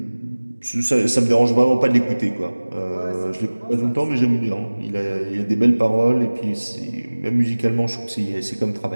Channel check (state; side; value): inverted; both; correlation -1.00